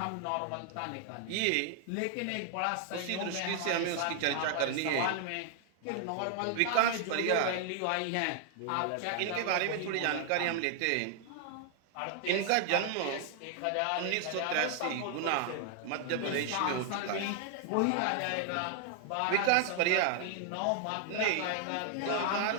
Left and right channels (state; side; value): different; both; correlation 0.00